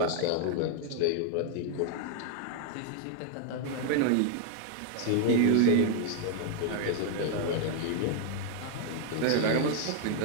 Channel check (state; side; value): different; both; correlation 0.00